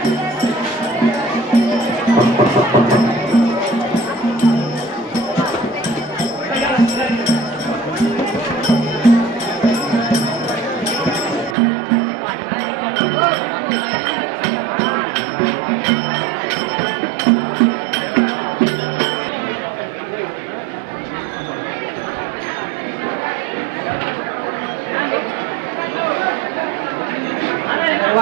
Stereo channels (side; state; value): left; drops out; at 11.6 s